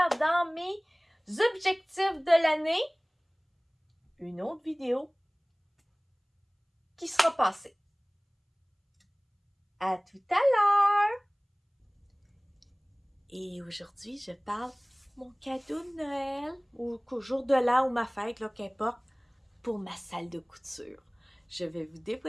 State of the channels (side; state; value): both; identical; correlation 1.00